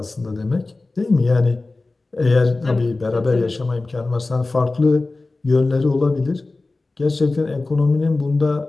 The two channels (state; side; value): quieter; right; 3.3 dB